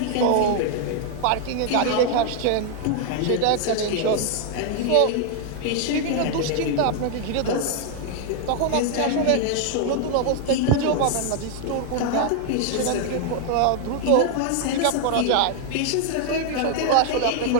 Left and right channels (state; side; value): different; both; correlation 0.00